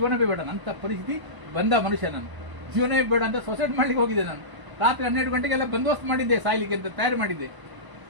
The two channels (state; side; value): late; left; 1.0 ms